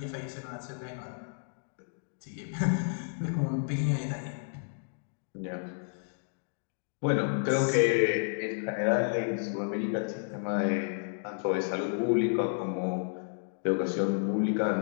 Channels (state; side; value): silent; right; digital silence